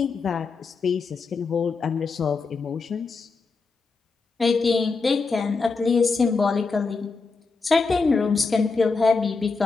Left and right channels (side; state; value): right; quieter; 4.4 dB